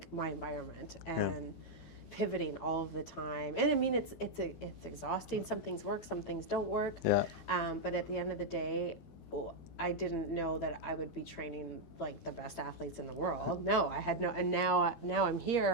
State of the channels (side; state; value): right; late; 12 ms